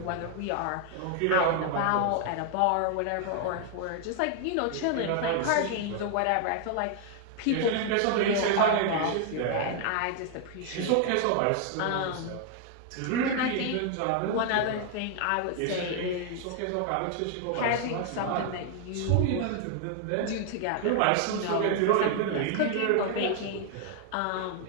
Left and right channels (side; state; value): both; different; correlation 0.00